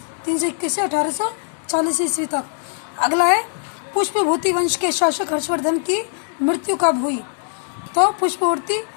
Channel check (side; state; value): right; silent; digital silence